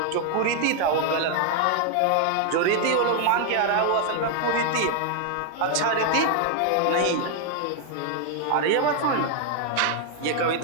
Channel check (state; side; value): different; both; correlation 0.00